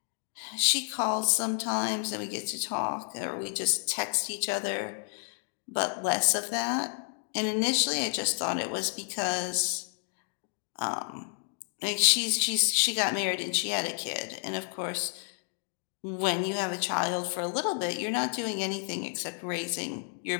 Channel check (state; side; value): silent; right; 58 dB below the other